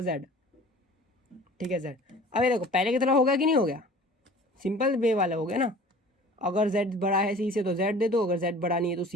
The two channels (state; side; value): normal; both; correlation 0.45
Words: जेड, ठीक है जेड। अब ये देखो पहले की तरह होगा कि नहीं हो गया, सिंपल वे वाला हो गया ना। अगर z बड़ा है सी से तो z दे दो, अगर z बड़ा नहीं है तो